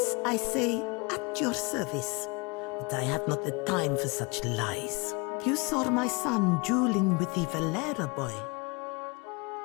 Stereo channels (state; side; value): quieter; right; 28.5 dB